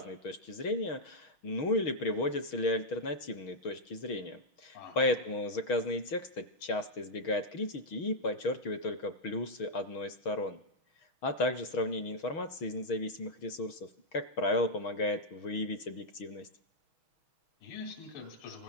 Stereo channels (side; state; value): right; late; 6.4 ms